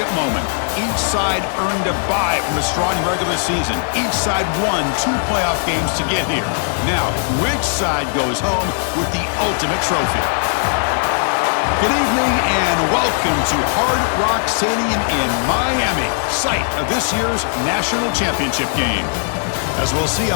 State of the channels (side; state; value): right; silent; digital silence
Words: moment. Each side earned a bye from a strong regular season. Each side won 2 playoff games to get here. Now, which side goes home with the ultimate trophy? Good evening and welcome to Hard Rock Stadium in Miami, site of this year's national championship game. As we'll see a